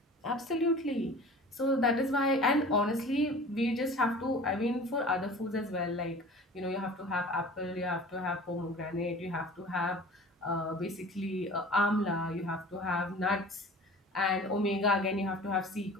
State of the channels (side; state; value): both; normal; correlation 0.42